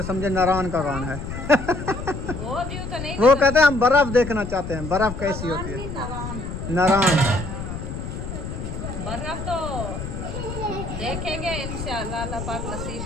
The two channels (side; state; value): left; noise; rumble, 7 dB below the sound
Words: समझे नारायण का कान है। वो व्यू तो नहीं। वो कहते हैं हम बर्फ देखना चाहते हैं, बर्फ कैसी होती है। नारायण बर्फ तो देखेंगे इंशाल्लाह, अल्लाह पाक नसीब